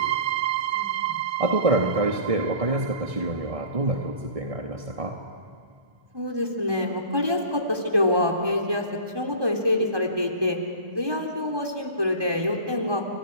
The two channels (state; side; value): late; left; 1.2 ms